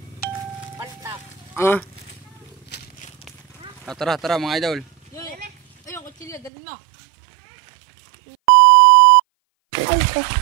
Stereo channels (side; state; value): left; drops out; at 6.5 s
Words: Tara, tara mga idol. Ayun, kutsilyo, dalhin mo.